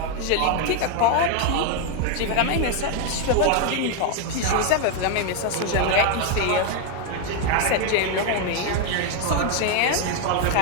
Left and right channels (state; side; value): different; both; correlation 0.01